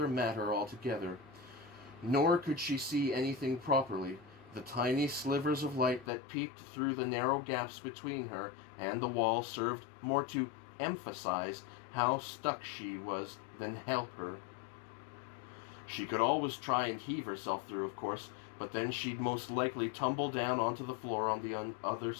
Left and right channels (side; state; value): right; drops out; at 6.1 s